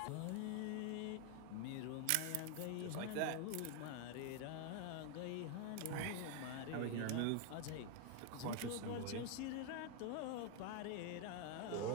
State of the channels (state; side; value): different; both; correlation 0.01